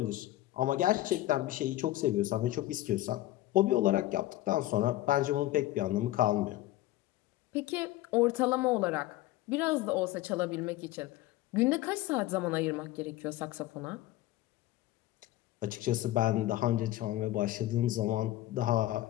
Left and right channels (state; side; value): quieter; right; 15.7 dB